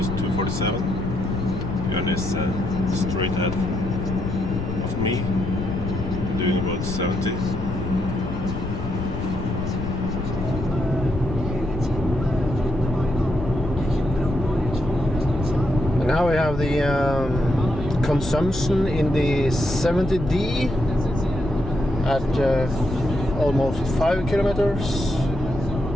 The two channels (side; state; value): left; noise; rumble, 7 dB below the sound